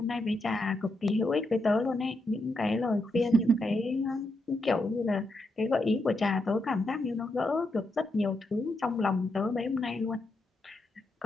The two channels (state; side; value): normal; both; correlation 0.83